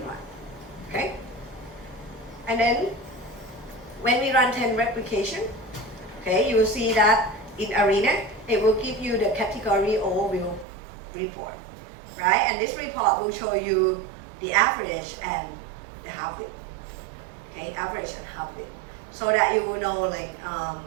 run, okay? And then when we run 10 replication, okay, you will see that in ARENA, it will give you the category overview report, right? And this report will show you the average and the half-width, okay, average and half-width, so that you will know like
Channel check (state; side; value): drops out; left; at 10.7 s